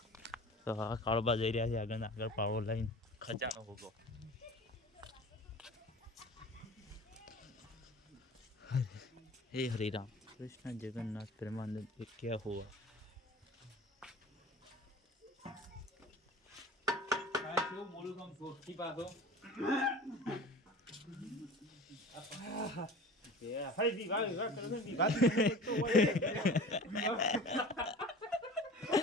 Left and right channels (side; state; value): both; normal; correlation 0.39